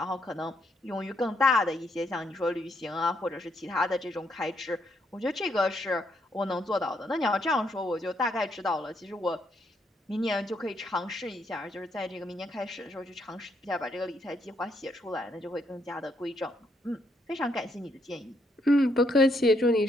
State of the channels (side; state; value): both; normal; correlation 0.75